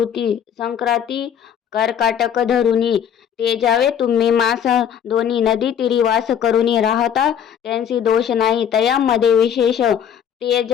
संक्रांती कर्काटक धरुनी ते जावे तुम्ही मास दोन्ही नदी तीरी वास करुनी राहता त्यांची दोष नाही तयामध्ये विशेष ते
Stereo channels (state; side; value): quieter; right; 8.7 dB